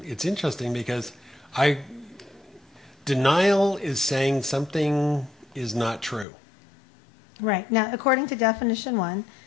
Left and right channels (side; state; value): right; drops out; at 6.2 s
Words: it's interesting because denial is saying something is not true. Right. Now, according to definition one,